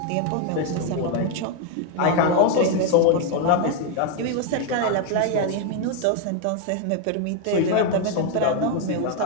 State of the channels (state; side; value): different; both; correlation 0.01